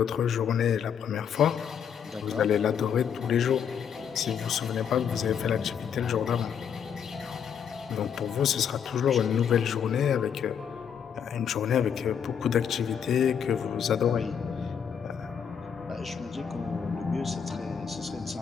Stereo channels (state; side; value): quieter; right; 7.7 dB